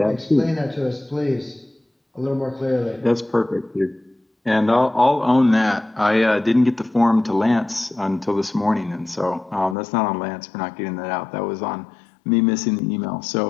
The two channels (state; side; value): drops out; right; at 9.8 s